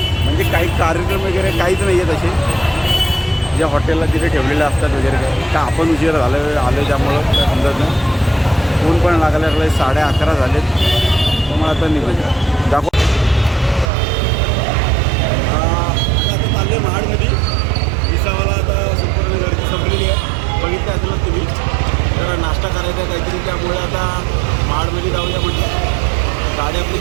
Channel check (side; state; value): left; drops out; at 13.9 s